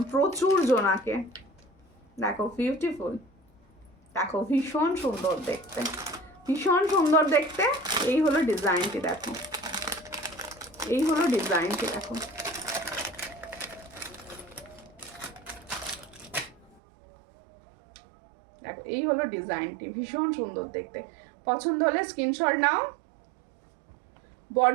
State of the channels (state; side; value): drops out; left; at 16.8 s